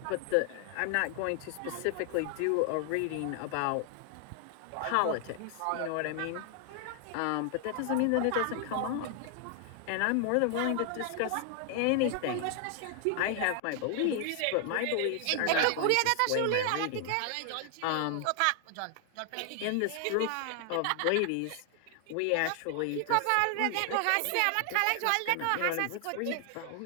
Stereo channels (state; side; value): different; both; correlation 0.00